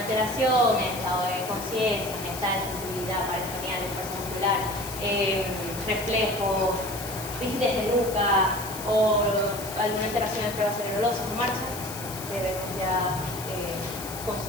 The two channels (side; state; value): left; noise; hiss, 10 dB below the sound